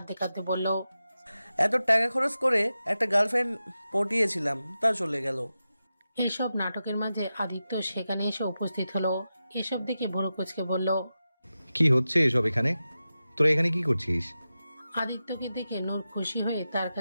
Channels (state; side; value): inverted; both; correlation -0.92